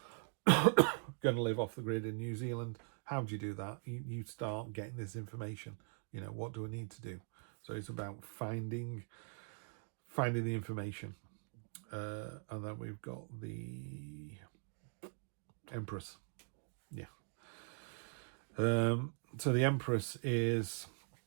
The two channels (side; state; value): left; silent; 50 dB below the other